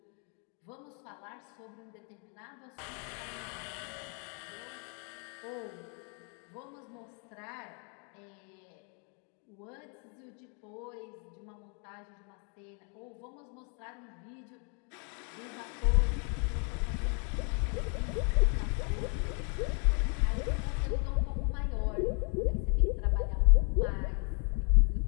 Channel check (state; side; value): quieter; right; 38.3 dB